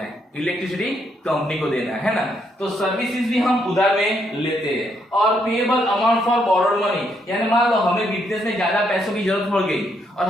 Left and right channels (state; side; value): normal; both; correlation 0.75